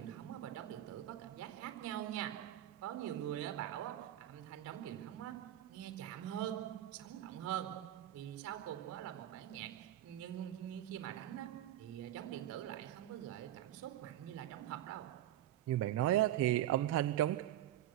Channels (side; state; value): left; quieter; 12.8 dB